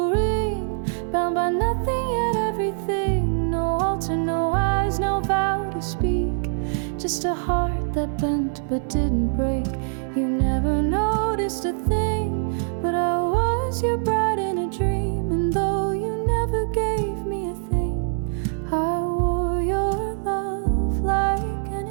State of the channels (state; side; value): silent; left; digital silence